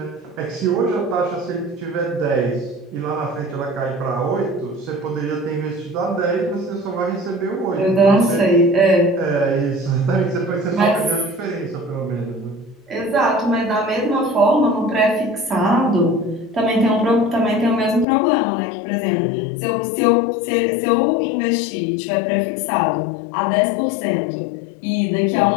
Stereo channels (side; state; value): right; drops out; at 18.1 s